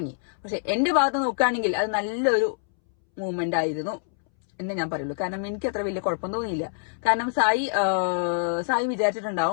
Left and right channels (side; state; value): right; silent; 61 dB below the other